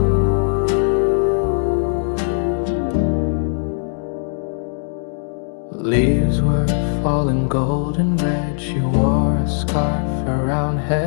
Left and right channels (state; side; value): silent; right; digital silence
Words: all in gold and red. She wore a scarf around